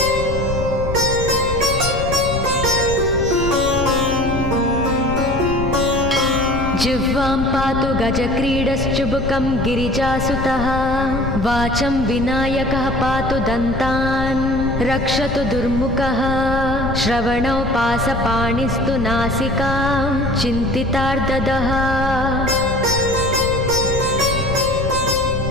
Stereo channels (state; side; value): noise; left; rumble, 6 dB below the sound